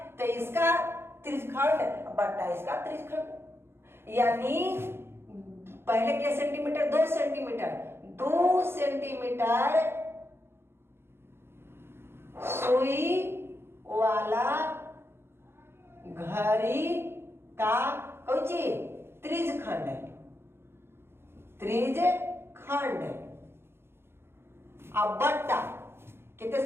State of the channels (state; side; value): late; left; 0.12 ms